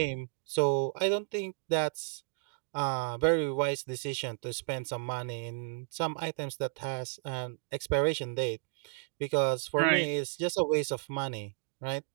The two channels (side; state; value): left; silent; digital silence